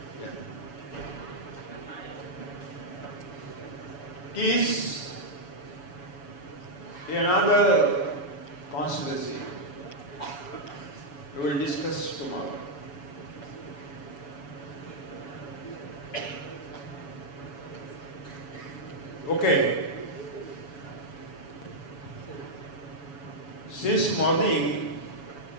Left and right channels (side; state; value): right; late; 7.1 ms